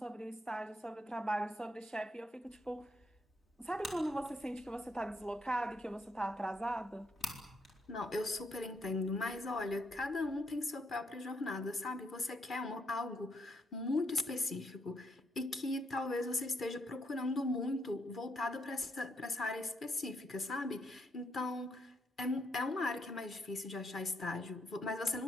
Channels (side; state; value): both; normal; correlation 0.76